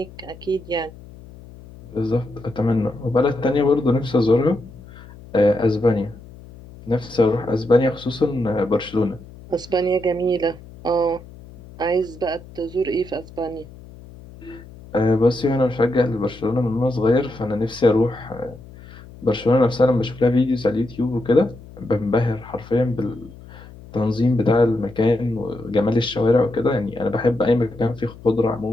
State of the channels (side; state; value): left; noise; hum, 19 dB below the sound